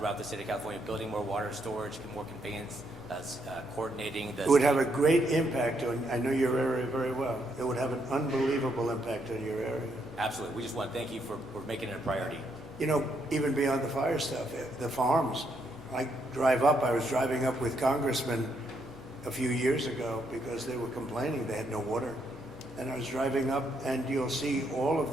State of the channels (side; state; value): both; normal; correlation 0.76